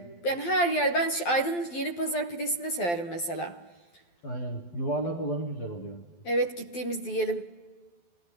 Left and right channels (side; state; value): right; late; 12 ms